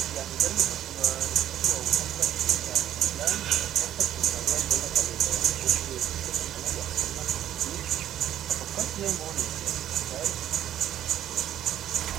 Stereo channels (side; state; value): left; quieter; 11.5 dB